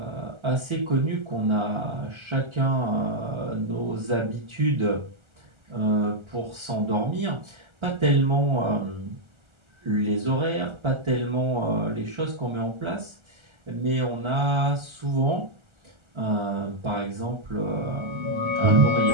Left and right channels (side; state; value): left; late; 1.4 ms